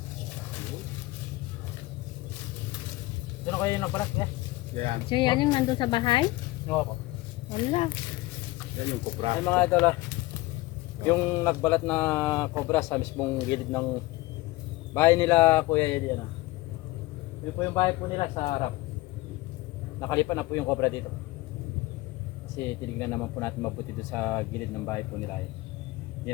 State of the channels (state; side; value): quieter; right; 20.0 dB